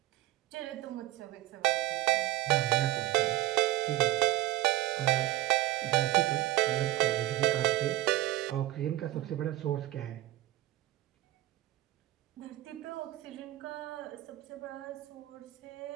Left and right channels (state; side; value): quieter; left; 15.7 dB